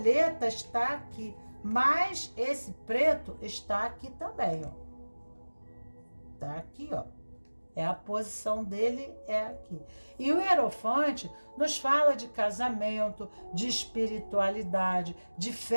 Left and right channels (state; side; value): inverted; both; correlation -1.00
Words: está aqui, mas esse preto está aqui também, ó. Tá aqui, ó. É a posição dele, é aqui. E o Hierophante nos fala de casamento, de espiritualidade, de